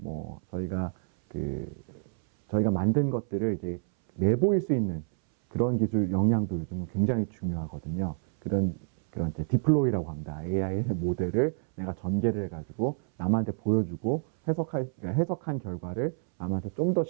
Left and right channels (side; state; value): left; silent; 59 dB below the other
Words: 뭐 저희가 만든 것들을 이제 내보일 수 있는 그런 기술 역량도 요즘은 굉장히 중요하거든요. 그런 이제 디플로이라고 합니다. AI 모델을 내가 전개를 해가지고 남한테 보여주고 해석한 결과를 남한테 좀 더